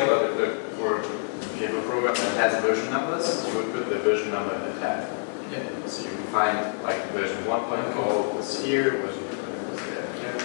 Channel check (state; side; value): silent; right; 60 dB below the other